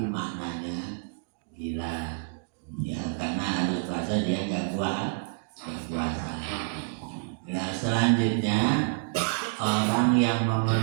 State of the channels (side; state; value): left; silent; digital silence